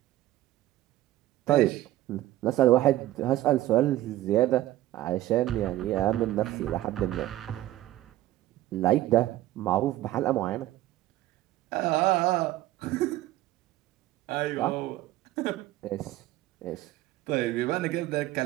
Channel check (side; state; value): left; quieter; 15.2 dB